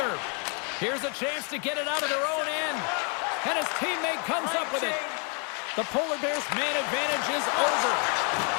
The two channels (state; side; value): quieter; right; 37.5 dB